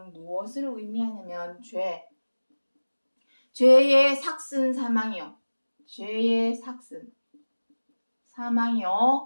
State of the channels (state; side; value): inverted; both; correlation -1.00